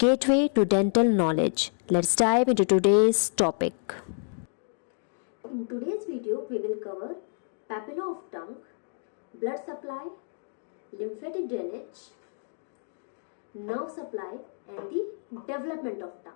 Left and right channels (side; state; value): right; silent; digital silence